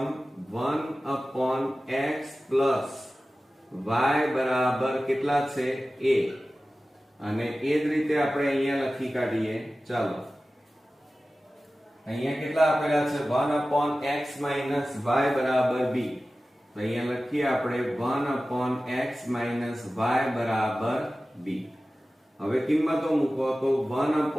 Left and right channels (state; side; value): normal; both; correlation 0.96